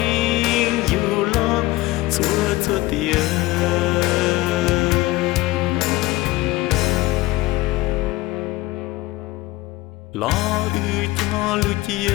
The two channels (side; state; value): right; quieter; 19.1 dB